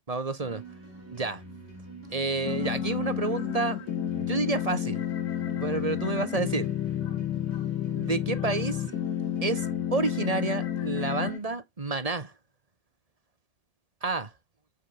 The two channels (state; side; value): late; left; 1.7 ms